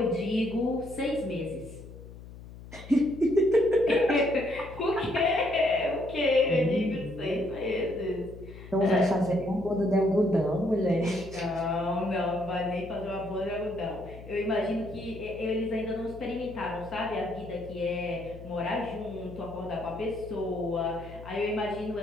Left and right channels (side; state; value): left; noise; hum, 15 dB below the sound